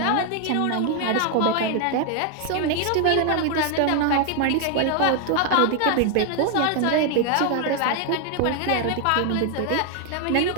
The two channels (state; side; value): different; both; correlation 0.00